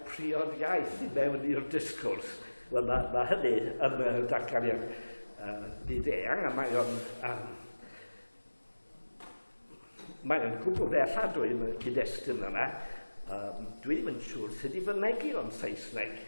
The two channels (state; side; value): inverted; both; correlation -1.00